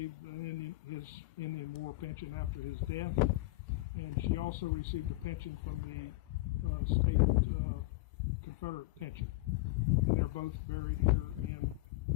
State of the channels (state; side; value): quieter; right; 20.8 dB